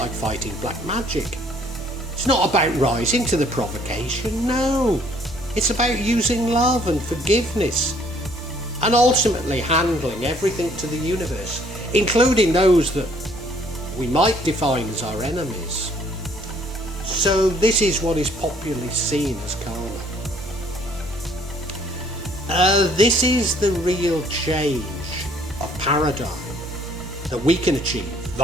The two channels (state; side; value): normal; both; correlation 0.62